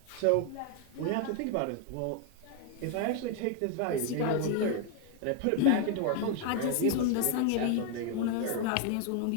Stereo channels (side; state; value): both; different; correlation 0.00